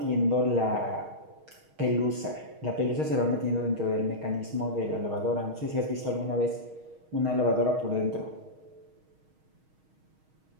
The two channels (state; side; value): late; left; 6.4 ms